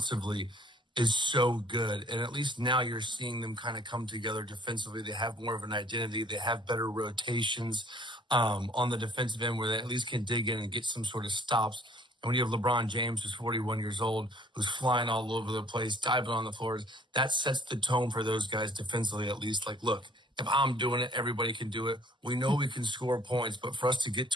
is so good, and at least now you're seeing them kind of come together defensively. They have more of an identity. They have better rotations on the defensive end where they at least can dig in and get some sort of stops. And when you have LeBron James, who's 41 years old, who's flying all over the place, diving on the floors, that sets the tone for those guys defensively at least. Like, look, if I'm doing it, everybody can do it. We know we can score points, but for us to get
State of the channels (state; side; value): normal; both; correlation 0.57